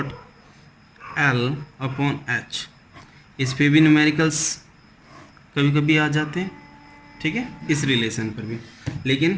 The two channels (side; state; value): both; identical; correlation 1.00